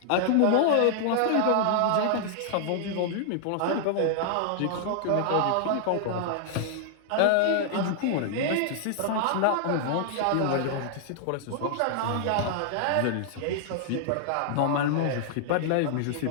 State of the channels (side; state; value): both; different; correlation -0.01